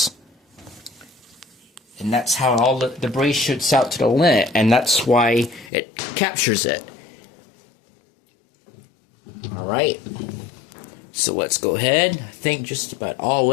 and that's how all the debris shoots out to the lint, and that's why it captures it. All right. So let's go ahead. I think just about all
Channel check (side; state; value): right; drops out; at 5.7 s